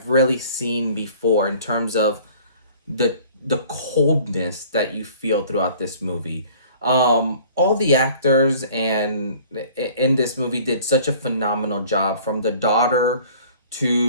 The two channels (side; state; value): both; inverted; correlation -0.50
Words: really seen before in terms of the coldness that you feel throughout this movie. All the actors in this movie did such a phenomenal job, from the daughter